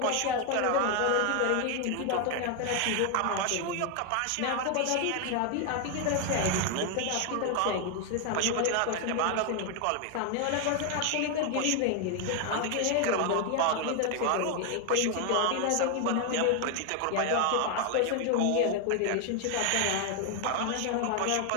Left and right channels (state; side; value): different; both; correlation 0.01